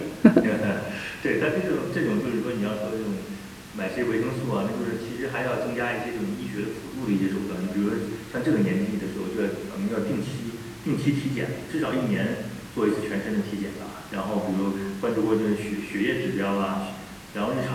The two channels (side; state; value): both; identical; correlation 1.00